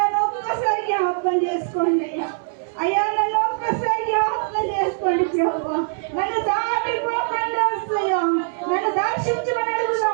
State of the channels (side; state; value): left; silent; 64 dB below the other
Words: ఒక్కసారి జ్ఞాపకం చేసుకోండి అయ్యా. అయ్యా నన్ను ఒక్కసారి జ్ఞాపకం చేసుకోండి ప్రభా. నన్ను దాటిపోకండి వస్తాయా. నన్ను దర్శించమని